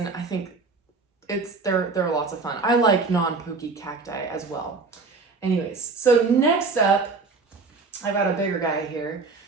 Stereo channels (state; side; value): quieter; left; 4.2 dB